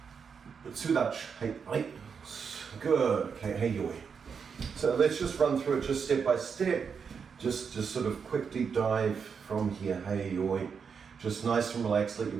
Tsudachi, hey, right, good, okay, hey, yoi. So let's just run through it just step by step, just sort of quick deep dive from here, hey, yoi. Just nice and relaxed, let your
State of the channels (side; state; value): left; quieter; 6.2 dB